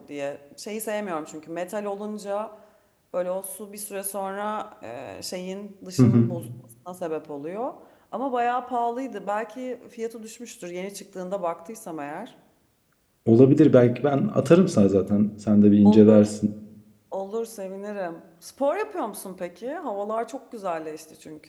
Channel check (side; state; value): both; identical; correlation 1.00